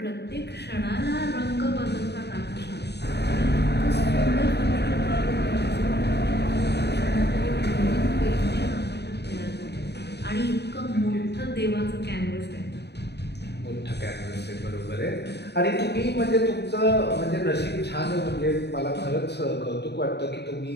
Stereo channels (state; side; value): late; right; 0.49 ms